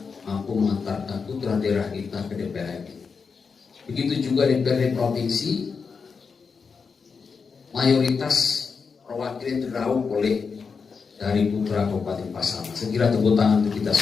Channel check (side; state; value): right; quieter; 5.4 dB